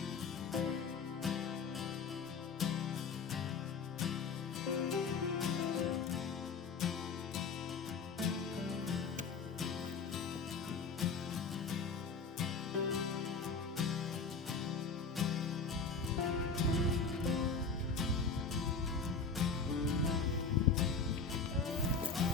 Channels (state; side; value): quieter; right; 4.9 dB